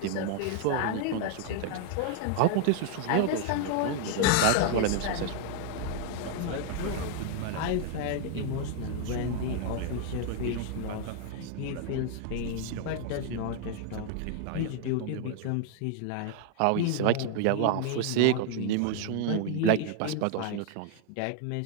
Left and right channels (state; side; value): different; both; correlation 0.00